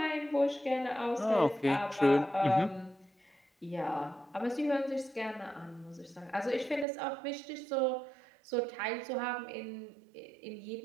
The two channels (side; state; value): left; drops out; at 6.9 s